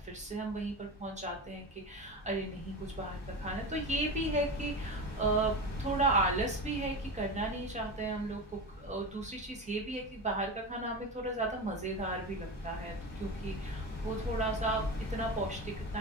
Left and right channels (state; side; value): normal; both; correlation 0.24